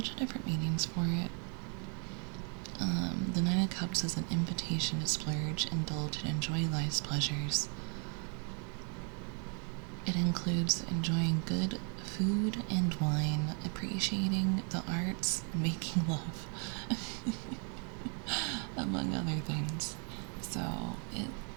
of different meanings for it. The Nine of Cups is an invitation to splurge, indulge, and enjoy life's pleasures. It includes enjoying good food and wine, appreciating the arts, and making love, among other things. So, it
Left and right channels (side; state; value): left; quieter; 39.2 dB